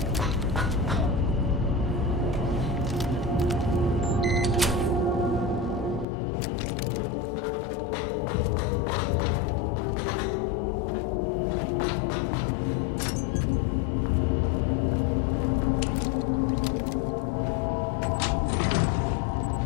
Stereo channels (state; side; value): drops out; right; at 6.1 s